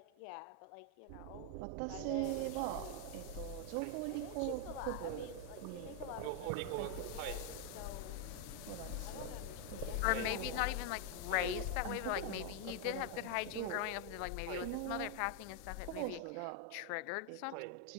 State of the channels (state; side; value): different; both; correlation 0.01